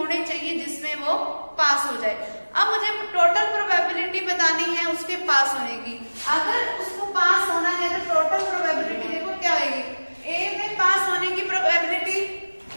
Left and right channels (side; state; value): both; inverted; correlation -1.00